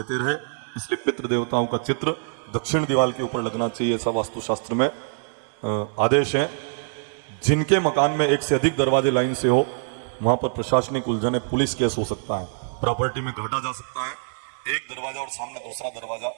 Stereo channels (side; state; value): left; silent; digital silence